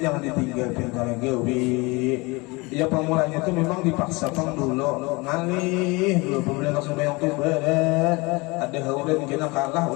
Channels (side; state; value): right; quieter; 25.4 dB